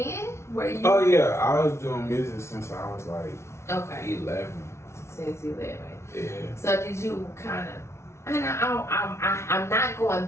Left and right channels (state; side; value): late; right; 0.13 ms